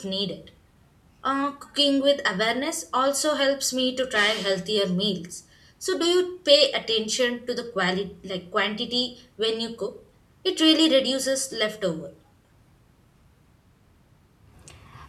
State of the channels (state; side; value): identical; both; correlation 1.00